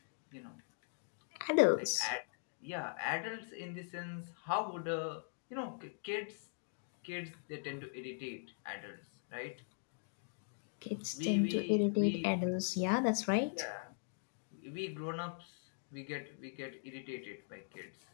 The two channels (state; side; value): silent; right; digital silence